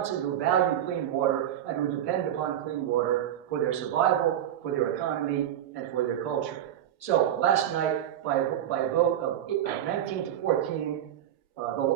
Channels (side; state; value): left; quieter; 11.0 dB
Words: who value clean water and who depend upon clean water for their survival, for their economy, and for their culture. So last night, by a vote of 19 to 14,